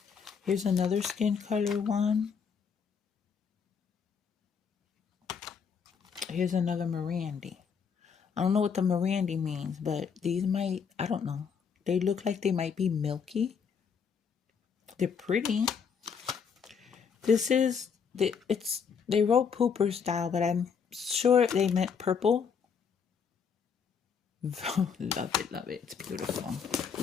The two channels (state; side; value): quieter; right; 6.5 dB